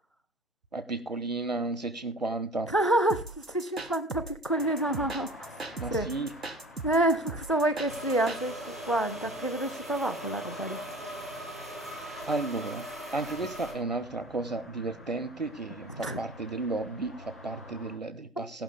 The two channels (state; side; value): normal; both; correlation 0.42